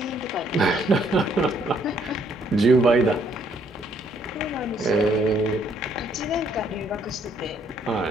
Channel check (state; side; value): normal; both; correlation 0.68